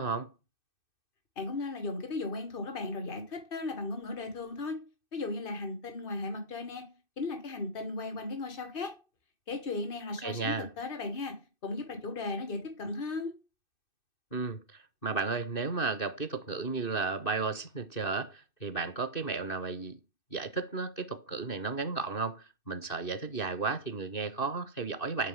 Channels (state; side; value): late; right; 2.6 ms